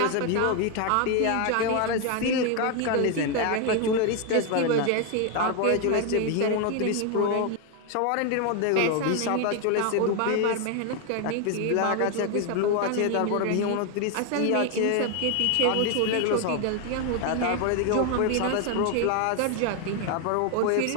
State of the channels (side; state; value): both; different; correlation 0.01